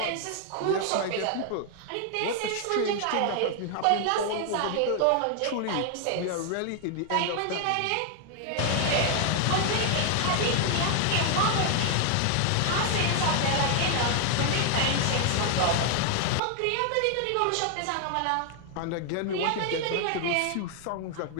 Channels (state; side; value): different; both; correlation 0.00